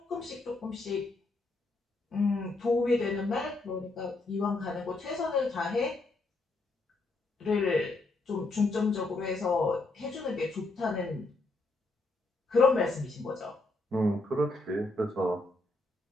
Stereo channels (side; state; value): right; quieter; 3.1 dB